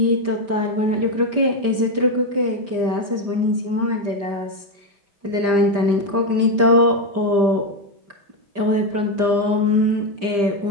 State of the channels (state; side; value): late; left; 5.0 ms